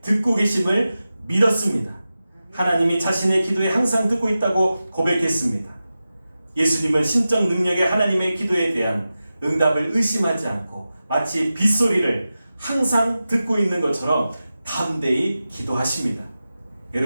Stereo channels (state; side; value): inverted; both; correlation -0.93